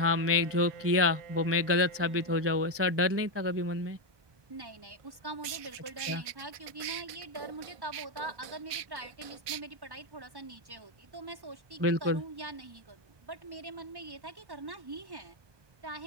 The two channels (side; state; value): left; late; 1.2 ms